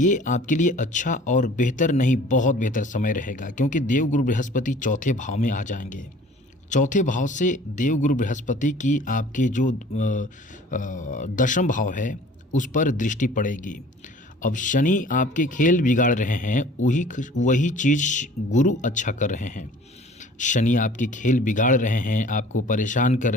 आपके लिए अच्छा और बेहतर नहीं, बहुत बेहतर समय रहेगा, क्योंकि देवगुरु बृहस्पति चौथे भाव में आ जाएंगे। चौथे भाव से देवगुरु बृहस्पति की आपके जो दशम भाव है उस पर दृष्टि पड़ेगी। अब शनि आपके खेल बिगाड़ रहे हैं, वही चीज़ गुरु अच्छा कर रहे हैं। शनि आपके खेल बिगाड़ रहे हैं, आपको परेशान कर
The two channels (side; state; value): both; normal; correlation 0.49